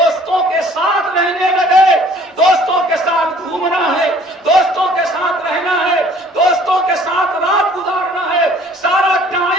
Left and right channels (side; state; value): both; normal; correlation 0.55